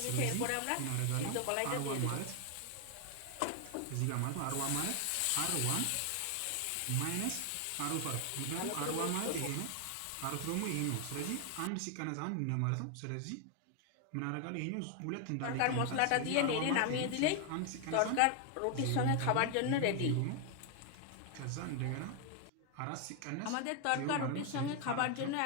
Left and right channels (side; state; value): both; different; correlation 0.01